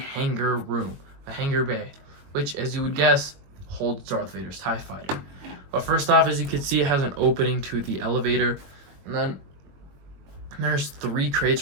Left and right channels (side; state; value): left; late; 21 ms